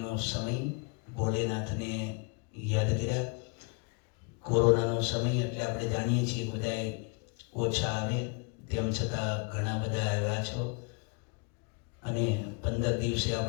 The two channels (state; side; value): quieter; right; 34.0 dB